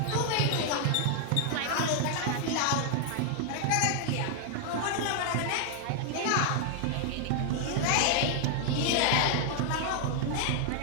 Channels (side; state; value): both; different; correlation 0.00